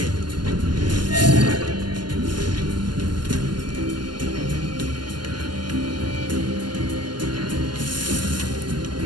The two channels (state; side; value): late; left; 0.71 ms